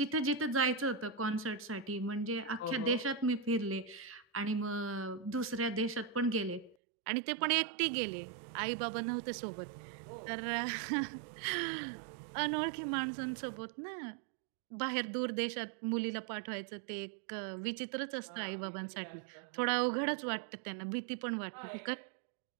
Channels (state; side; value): drops out; left; at 6.8 s